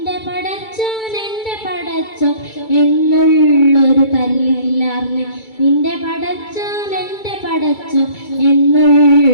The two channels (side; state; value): right; late; 2.3 ms